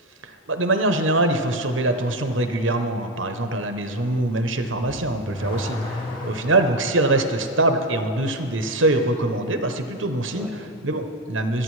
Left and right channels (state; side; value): normal; both; correlation 0.14